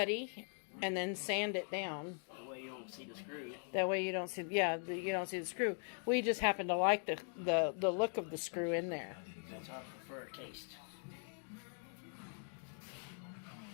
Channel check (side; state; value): right; silent; 51 dB below the other